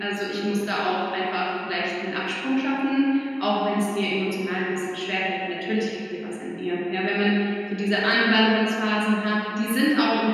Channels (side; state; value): both; identical; correlation 1.00